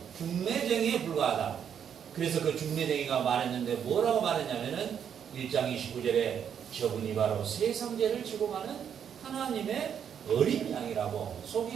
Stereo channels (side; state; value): left; quieter; 8.3 dB